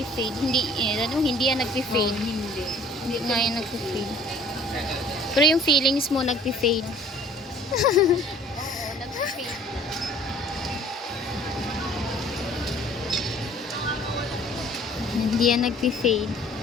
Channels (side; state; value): both; normal; correlation 0.53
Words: Hindi yan nagpi-fade. Hindi. Hindi nga yan nagpi-fade. Pero yung feelings mo nagpi-fade. Oo, nag-fade. Hindi yan nagpi-fade.